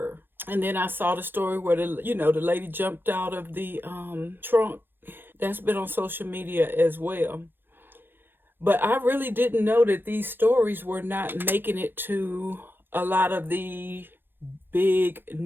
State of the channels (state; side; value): late; left; 0.10 ms